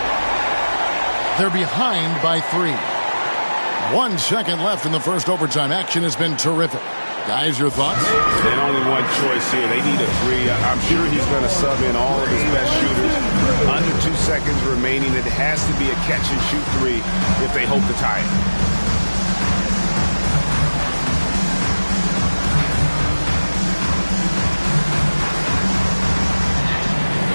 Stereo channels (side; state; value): both; inverted; correlation -1.00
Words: They're behind by 3. 1 second left in the first overtime. Action has been terrific. Guys, your thoughts? And only one choice here. They need a 3. I'm sure he's going to sub in all of his best shooters. Under 2 seconds remaining. It has to be a catch-and-shoot 3 if they hope to tie it.